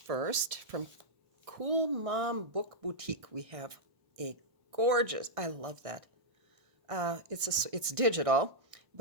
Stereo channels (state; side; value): late; left; 1.6 ms